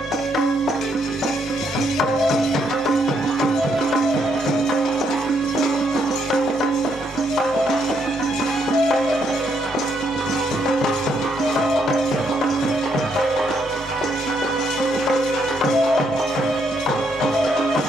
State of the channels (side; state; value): both; normal; correlation 0.74